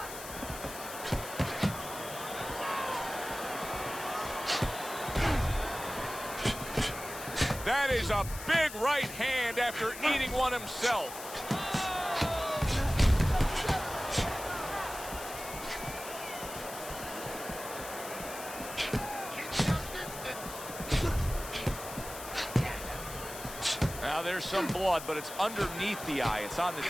That is a big right hand after eating one himself. Now there's some blood, but it's underneath the eye. It's on the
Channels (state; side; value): noise; left; hiss, 11 dB below the sound